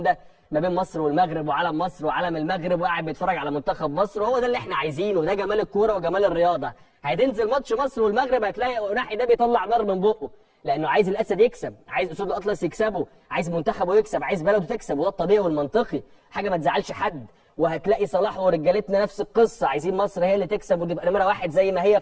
ما بين مصر والمغرب وعلم مصر وعلم المغرب، وقاعد بيتفرج على منتخب مصر. وهو ده اللي احنا عايزينه، ده جمال الكوره وجمال الرياضه. هتنزل ماتش مصر والمغرب هتلاقي أناحي ده بيطلع نار من بقه، لانه عايز الاسد يكسب، عايز اسود الاطلس يكسبوا، عايز منتخبه يكسب، عايز بلده تكسب، وده الطبيعي والمنطقي، حاجه ما تزعلش حد. وهتلاقي صلاح ورجالتنا نفس القصه، عايزين مصر هي اللي تكسب وتبقى نمره واحد زي ما هي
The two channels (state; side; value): identical; both; correlation 1.00